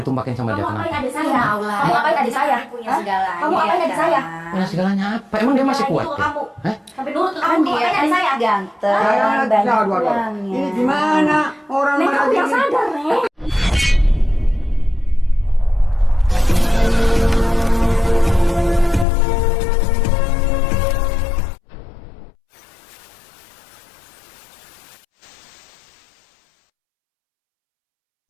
sama dia Kamu kenapa? ngapain adik saya? Kamu ngapain adik saya? Punya segalanya. Kamu ngapain adik saya? Punya segalanya apa? Emang dia masih kuat ya? Kamu. Hah? Sampai nurut Kan kamu dia ngapain adik saya? ganteng, Saya banyak aduh. uangnya. Ini gimana orang Nek, kamu yang ini? sadar, Nek.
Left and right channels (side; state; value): right; drops out; at 19.1 s